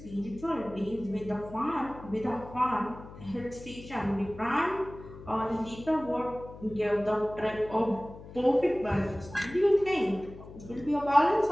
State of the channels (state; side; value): noise; left; hum, 16 dB below the sound